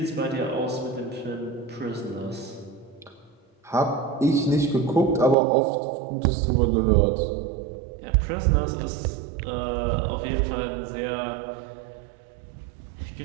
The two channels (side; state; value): left; drops out; at 5.4 s